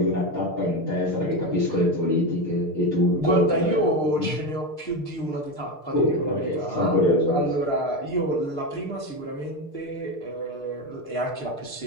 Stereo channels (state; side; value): late; right; 6.6 ms